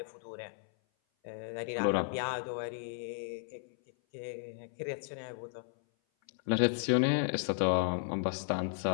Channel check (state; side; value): silent; right; 55 dB below the other